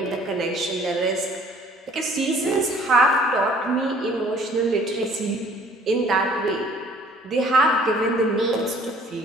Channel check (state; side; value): normal; both; correlation 0.55